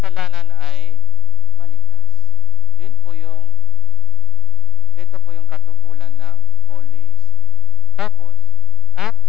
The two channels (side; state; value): both; normal; correlation 0.54